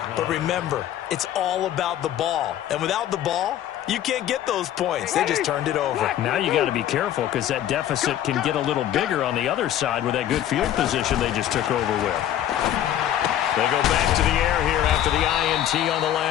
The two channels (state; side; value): quieter; right; 11.6 dB